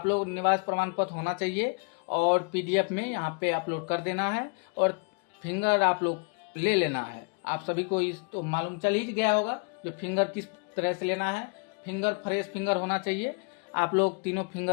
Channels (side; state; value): right; quieter; 34.3 dB